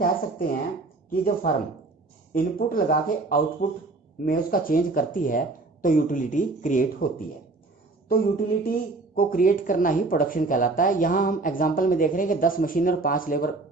सकते हैं कि जब फर्म इनपुट लगा के आउटपुट में उसका चेंज करती है तो यूटिलिटी क्रिएट होती है। तो यूटिलिटी को क्रिएट करना ही प्रोडक्शन कहलाता है। यहाँ हम एग्जाम्पल में देख रहे हैं कि 10 मशीनें और 5 लेबर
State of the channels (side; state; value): left; quieter; 3.4 dB